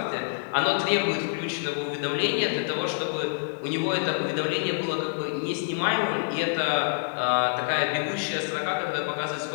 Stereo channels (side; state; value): right; silent; digital silence